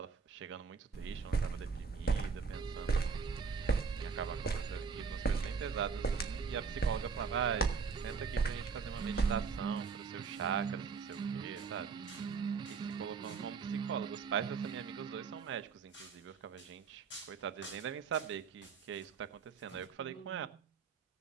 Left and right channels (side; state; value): left; quieter; 5.4 dB